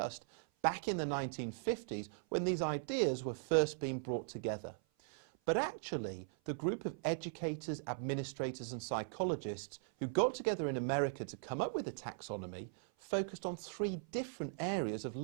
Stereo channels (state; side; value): silent; left; 52 dB below the other